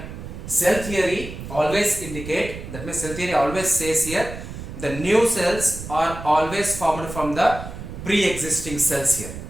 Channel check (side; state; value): right; noise; rumble, 10 dB below the sound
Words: Cell theory always indicate, that means cell theory always says here, the new cells are always formed from the pre-existing cells here.